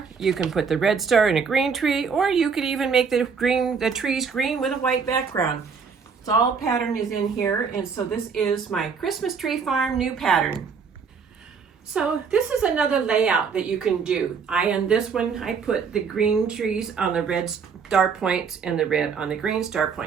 you can put the red star in a green tree, or you could even make the trees green with a white background. It's all pattern is in here, and so this is my Christmas Tree Farm new pattern. So this is another layout that you can do. In this one, I put the green trees on the red star points and the red on the green star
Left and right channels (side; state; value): left; quieter; 5.8 dB